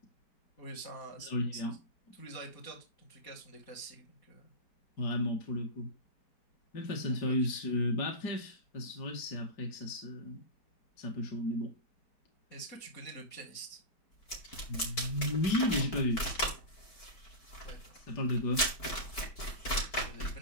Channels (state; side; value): late; right; 4.5 ms